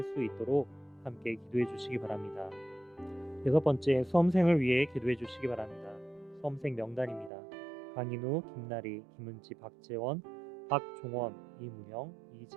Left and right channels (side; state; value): left; drops out; at 7.3 s